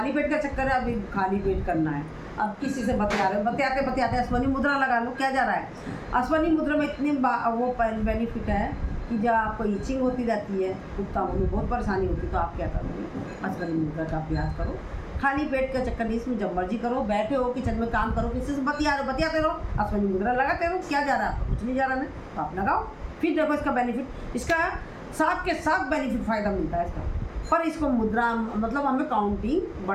पेट का चक्कर है, अभी खाली पेट करना है, अब किसी से बतिया रहे हो, बतियाते अश्वनी मुद्रा लगा लो, क्या जा रहा है। अश्वनी मुद्रा में इतनी वो बेनिफिट है कि जब आपको ईचिंग होती रहती है, गुप्तांगों में बहुत परेशानी होती है, तो आप क्या करोगे, अश्वनी मुद्रा का अभ्यास करो। खाली पेट का चक्कर नहीं, इसमें जब मर्जी करो, बैठे हो किचन में काम करो, किसी से बतियाते रहो, अश्वनी मुद्रा लगाते रहो, क्या जा रहा है, कुछ नहीं जा रहा है, तो आप लगाओ। फिर देखो इसका बेनिफिट, इसका साथ के साथ बेनिफिट फ़ायदा मिलता है इसका। पर इसको मुद्रा मतलब हमें काउंटिंग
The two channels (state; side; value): identical; both; correlation 1.00